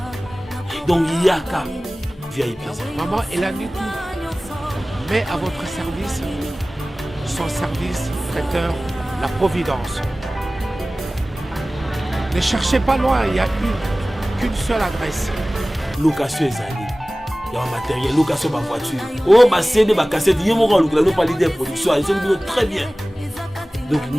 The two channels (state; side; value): normal; both; correlation 0.98